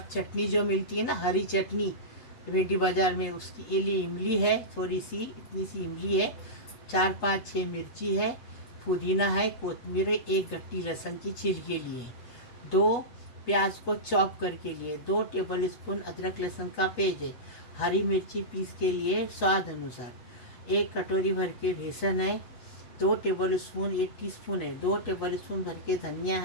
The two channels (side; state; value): right; late; 7.9 ms